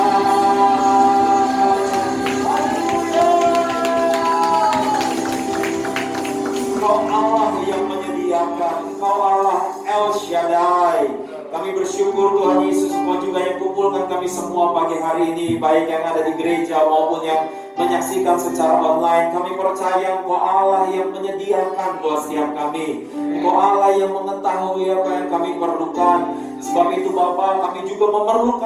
Allah yang menyediakan, Engkau Allah El Shaddai. Kami bersyukur Tuhan Yesus, Engkau juga yang kumpulkan kami semua pagi hari ini, baik yang ada di gereja maupun yang menyaksikan secara online. Kami percaya Engkau Allah yang menyediakan buat setiap kami. Engkau Allah yang mengetahui apa yang kami perlukan. Sebab itu Bapa, kami juga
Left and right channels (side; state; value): both; identical; correlation 1.00